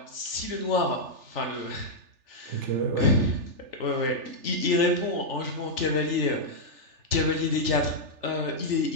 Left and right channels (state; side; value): late; left; 3.4 ms